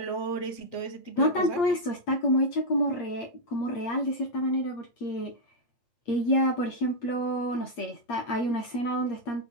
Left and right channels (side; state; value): right; late; 8.5 ms